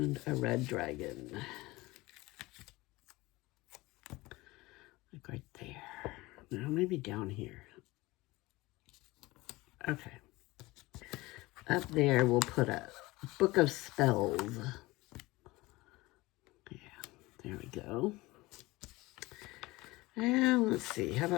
a red dragon. Like right there. Now maybe down here. Okay. Up there we'll put a book of spells. Yeah, there we go. And let's see, how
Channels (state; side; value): quieter; right; 20.8 dB